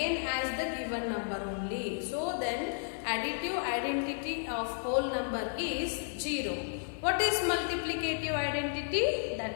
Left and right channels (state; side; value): silent; right; 56 dB below the other